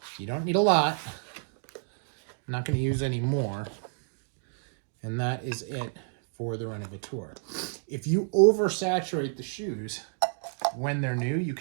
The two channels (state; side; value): silent; left; digital silence